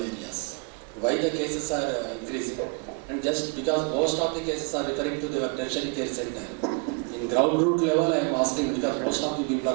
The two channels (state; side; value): quieter; left; 33.6 dB